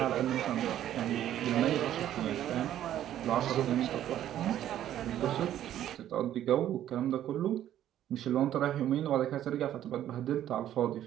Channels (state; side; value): quieter; left; 11.7 dB